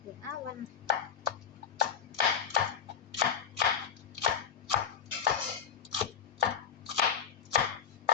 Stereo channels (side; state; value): right; quieter; 7.5 dB